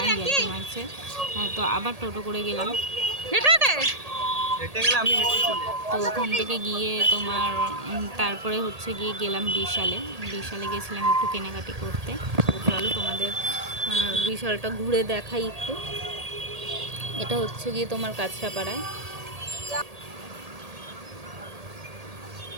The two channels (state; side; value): late; left; 1.8 ms